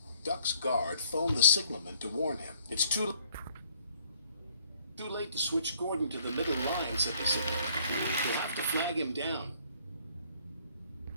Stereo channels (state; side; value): inverted; both; correlation -0.64